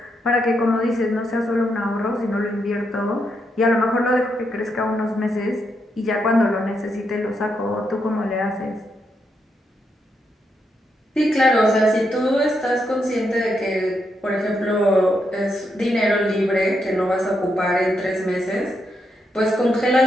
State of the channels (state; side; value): normal; both; correlation 0.81